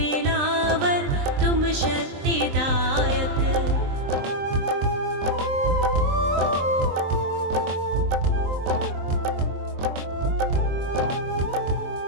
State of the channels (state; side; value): late; left; 23 ms